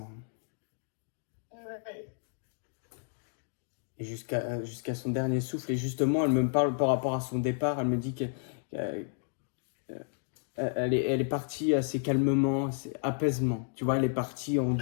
Ouais. Et jusqu'à son dernier souffle. Et justement, elle me parle par rapport à son départ. Elle me dit qu'elle elle est partie assez calmement, assez apaisement. Tu vois, elle est partie en Très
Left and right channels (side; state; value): right; silent; digital silence